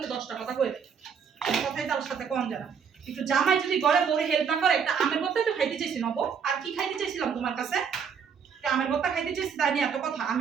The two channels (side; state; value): left; quieter; 6.8 dB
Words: 10টা কথা কই দেয়। কথাই তার সাথে কম জানা। একটু জামাই যদি ঘরে বড় হেল্প না করে, একটা আমের বোতল তো খাইতে চাইছি নব। আর কি খাইতে চাইছিলাম তোমার কাছে? আমের বোতল খাইতে চাইছি, তাই নিয়ে এত কথা।